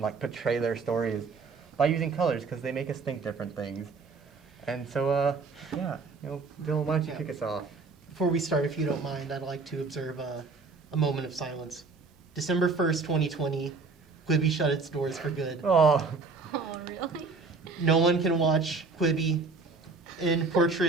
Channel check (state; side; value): quieter; left; 4.2 dB